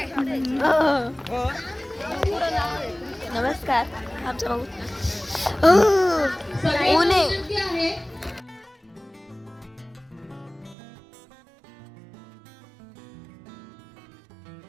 नमस्कार. आमचा भाऊ ऊने.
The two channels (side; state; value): left; drops out; at 10.8 s